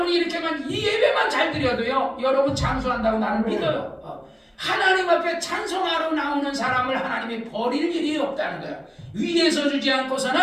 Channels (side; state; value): both; identical; correlation 1.00